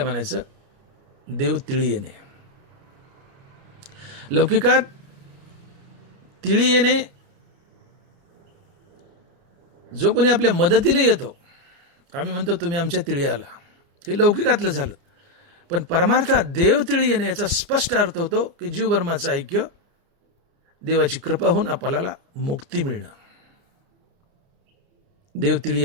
म्हणायचं देव तिळी येणे. लौकिकात तिळी येणे जो कोणी आपल्या मदतीला येतो, आम्ही म्हणतो तुम्ही आमच्या तिळी आला, हे लौकिकातलं झालं. पण परमार्थात देव तिळी येणे याचा स्पष्ट अर्थ होतो की जीव ब्रह्माचं ऐक्य, देवाची कृपा होऊन आपल्याला मुक्ती मिळणं. देव तिळी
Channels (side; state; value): left; late; 29 ms